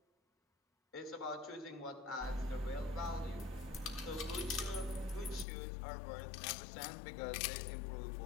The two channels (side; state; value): right; drops out; at 5.5 s